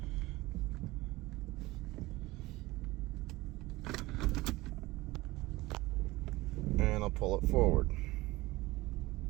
And I'll pull it forward.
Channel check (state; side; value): quieter; left; 19.9 dB